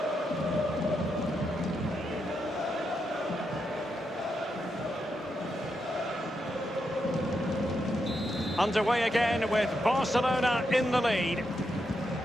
Underway again with Barcelona in the lead.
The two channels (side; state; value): both; normal; correlation 0.83